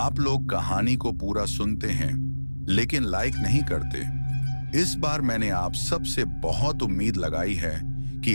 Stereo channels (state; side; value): inverted; both; correlation -1.00